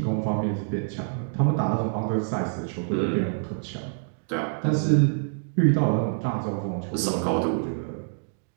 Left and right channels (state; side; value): silent; left; digital silence